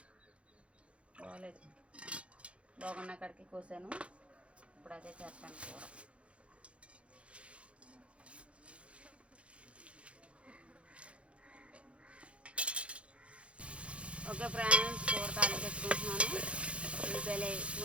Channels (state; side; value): late; left; 0.061 ms